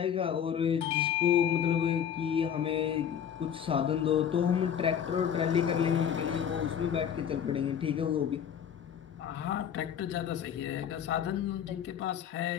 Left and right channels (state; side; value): quieter; right; 8.7 dB